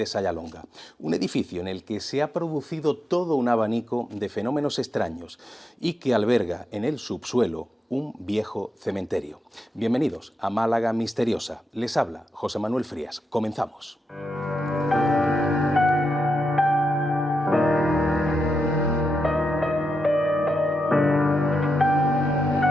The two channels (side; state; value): both; normal; correlation 0.86